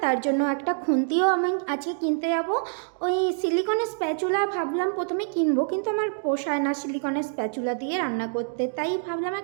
তার জন্য একটা খুন্তিও আমি আজকে কিনতে যাব। ওই সিলিকনের স্প্যাচুলা ভাবলাম প্রথমে কিনবো, কিন্তু আমার পোষায় না সিলিকনের স্প্যাচুলা দিয়ে রান্না করতে, তাই ভাবলাম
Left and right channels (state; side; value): silent; left; digital silence